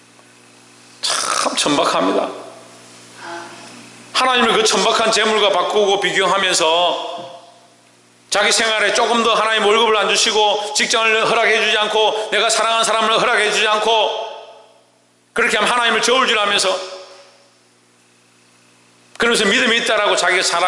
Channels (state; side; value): identical; both; correlation 1.00